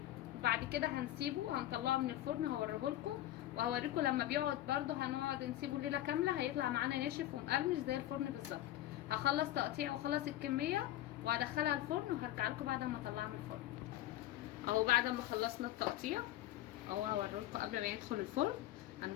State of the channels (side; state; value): right; quieter; 14.1 dB